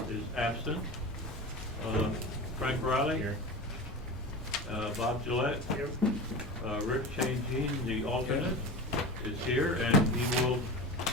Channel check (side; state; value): both; normal; correlation 0.29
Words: is absent. Frank Riley? Here. Bob Gillette? Yep. Rick Changine, the alternate, is here, and he will